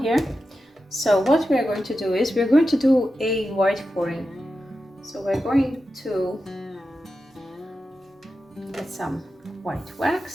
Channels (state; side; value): normal; both; correlation 0.91